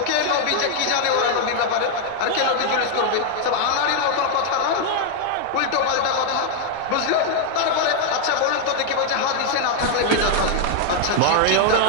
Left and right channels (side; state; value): both; different; correlation 0.00